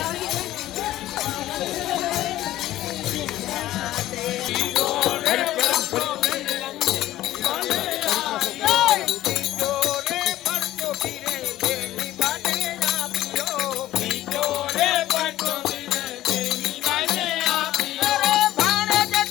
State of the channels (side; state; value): right; quieter; 14.6 dB